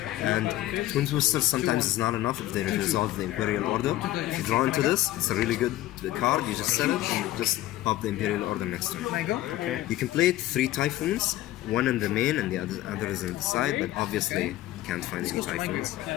And Twin Twisters sometimes is not enough if they resolve the Imperial Order. If you draw into this, it's a really good card. You just set it and you just pop the Imperial Order next turn. Can I go? Okay. You can play 3 Typhoons, 1 in the main and the other is on the side, but obviously you can't find any Typhoons.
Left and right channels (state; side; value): quieter; right; 15.2 dB